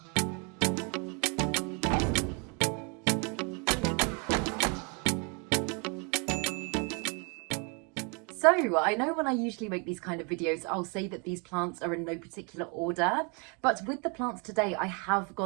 So I know when I usually make these kind of videos, I'll say that these plants are in no particular order, but with the plants today, I have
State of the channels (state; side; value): quieter; left; 34.2 dB